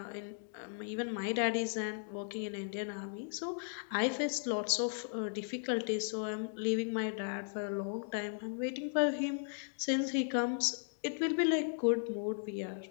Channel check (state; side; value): silent; right; digital silence